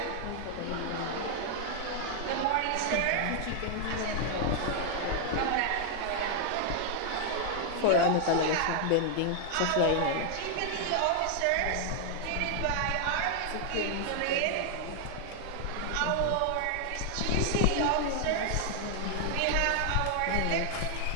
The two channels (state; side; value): different; both; correlation 0.00